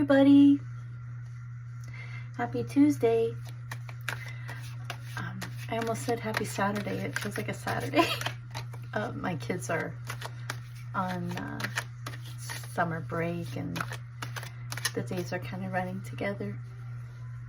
Happy Tuesday. I almost said happy Saturday. It feels like a Saturday. My kids are on summer break and the days are kind of running together.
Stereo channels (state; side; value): identical; both; correlation 1.00